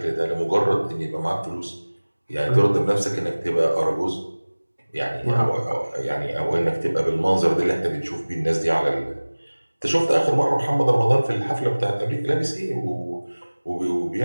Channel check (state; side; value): inverted; both; correlation -1.00